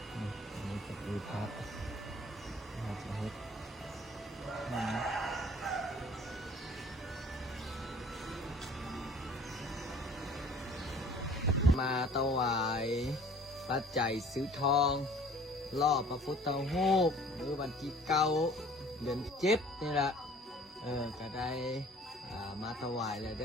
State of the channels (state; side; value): normal; both; correlation 0.51